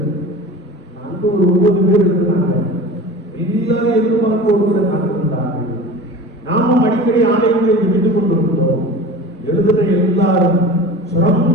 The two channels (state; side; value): normal; both; correlation 0.36